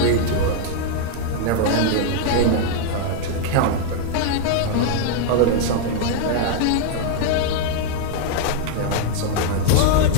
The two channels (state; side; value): different; both; correlation -0.01